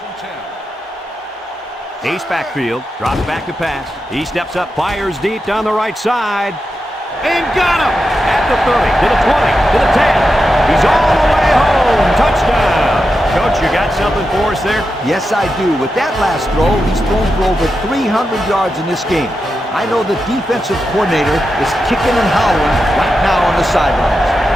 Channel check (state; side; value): normal; both; correlation 0.89